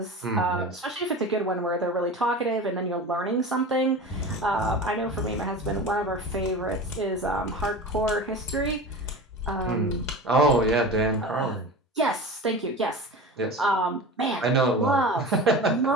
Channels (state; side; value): normal; both; correlation 0.32